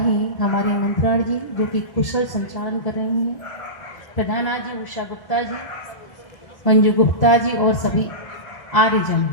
हमारे मंत्राण जी, जो कि कुशल संचालन कर रही हैं। प्रधाना जी उषा गुप्ता जी, मंजू गुप्ता जी और सभी आर्यजन।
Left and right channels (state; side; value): late; right; 1.1 ms